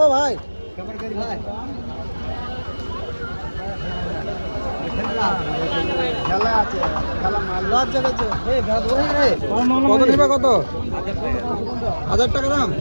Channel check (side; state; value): both; inverted; correlation -1.00